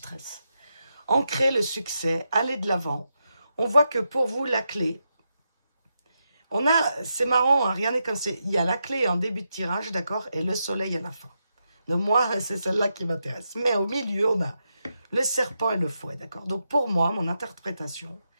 ancrer le succès, aller de l'avant. On voit que pour vous, la clé, c'est marrant, hein, rien n'est comme c'est, il y a la clé en début de tirage, d'accord, et le soleil à la fin. Donc moi, c'est celle-là qui m'intéresse. Mais au milieu, on a le serpent et le fouet, d'accord? Donc pour moi, mon interprétation,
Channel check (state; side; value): inverted; both; correlation -0.85